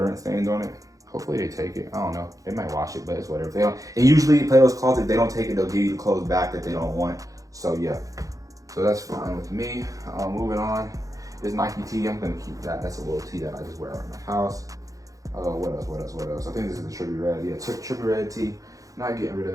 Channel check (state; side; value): late; left; 0.17 ms